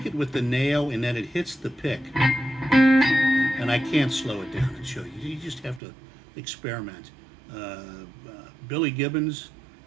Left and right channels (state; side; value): drops out; left; at 5.8 s